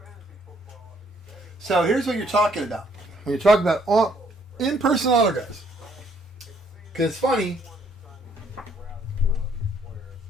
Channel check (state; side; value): normal; both; correlation 0.66